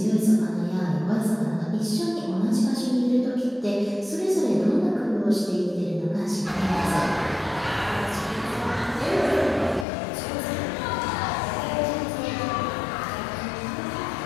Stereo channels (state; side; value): drops out; right; at 9.9 s